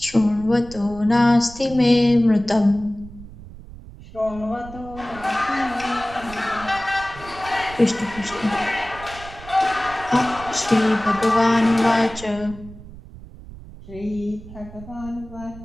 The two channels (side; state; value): right; noise; rumble, 16 dB below the sound